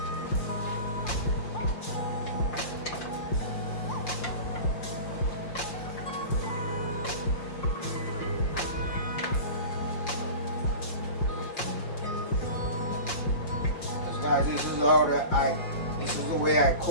Guys, this is the way I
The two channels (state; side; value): late; right; 5.7 ms